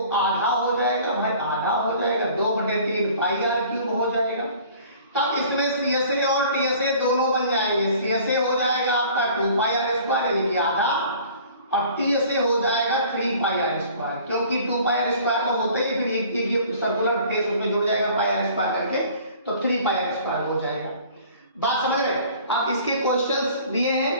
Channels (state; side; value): inverted; both; correlation -0.49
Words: आधा हो जाएगा, भाई आधा हो जाएगा, 2/3 पाई आर क्यूब हो जाएगा। तब इसमें सीएसए और टीएसए दोनों बन जाएंगे। सीएसए हो जाएगा आपका 2 पाई आर स्क्वायर यानी कि आधा, और टीएसए हो जाएगा 3 पाई आर स्क्वायर, क्योंकि 2 पाई आर स्क्वायर तो होते ही, फिर एक सर्कुलर केस उसमें जुड़ जाएगा पाई आर स्क्वायर करके, तो 3 पाई आर स्क्वायर हो जाएगा। बात समझ रहे हैं? आप इसके क्वेश्चंस दिए